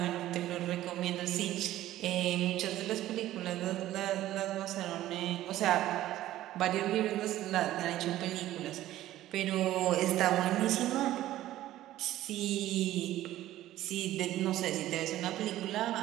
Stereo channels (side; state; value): left; quieter; 14.2 dB